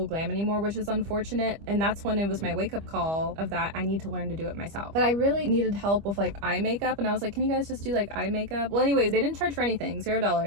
glam anymore, which is unfortunate. And that's when it was my wake up call of that I need to learn to do it myself. But I really needed help with like eye makeup, and I was like, can you guys just do like eye makeup? Well, anyways, they didn't charge for anything,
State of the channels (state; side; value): late; left; 25 ms